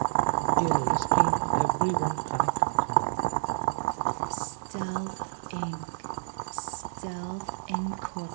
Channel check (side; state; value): left; silent; 59 dB below the other